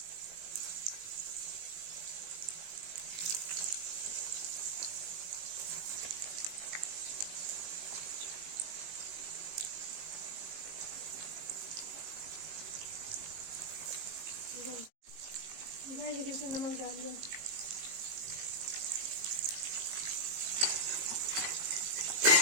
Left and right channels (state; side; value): late; left; 19 ms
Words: गाइस देखिए इसमें नमक डाल दिया।